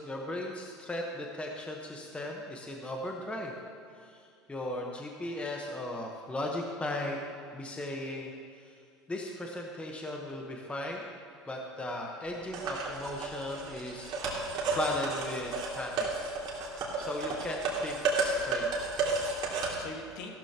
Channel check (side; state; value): both; normal; correlation 0.45